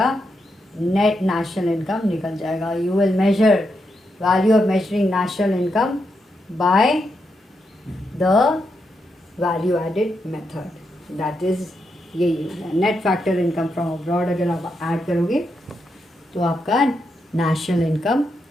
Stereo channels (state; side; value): normal; both; correlation 0.83